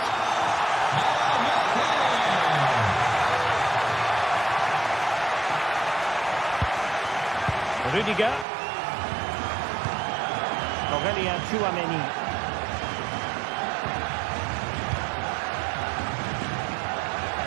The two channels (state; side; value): drops out; left; at 8.5 s